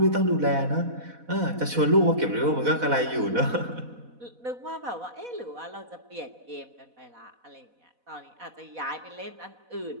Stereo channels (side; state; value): left; late; 4.1 ms